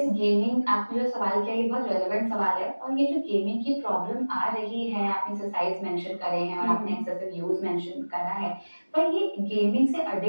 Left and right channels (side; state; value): both; inverted; correlation -1.00